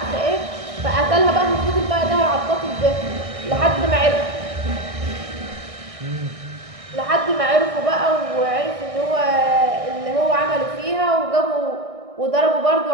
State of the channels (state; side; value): late; left; 1.6 ms